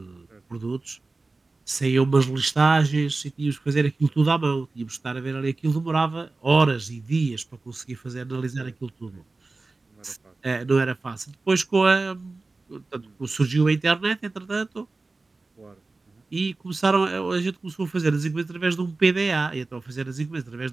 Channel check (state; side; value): quieter; left; 3.5 dB